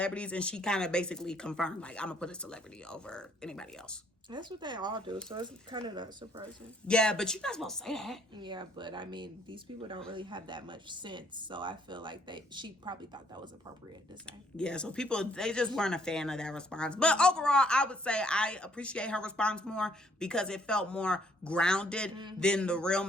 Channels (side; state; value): both; normal; correlation 0.65